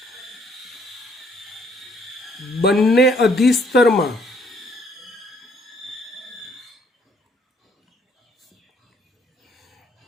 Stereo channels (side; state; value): both; normal; correlation 0.65